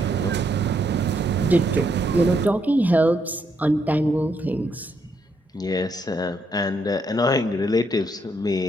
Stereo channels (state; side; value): normal; both; correlation 0.75